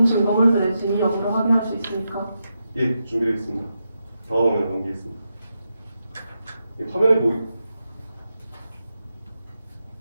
증거물들의 진위 여부를 확인할 수 있습니까? 예, 준비되어 있습니다. 다음 화면을 넘기겠습니다.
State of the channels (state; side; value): inverted; both; correlation -0.86